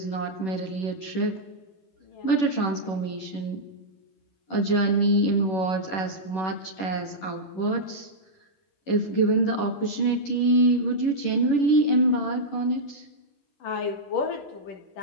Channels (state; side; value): late; right; 11 ms